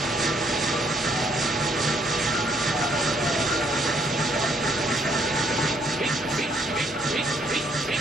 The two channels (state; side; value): normal; both; correlation 0.69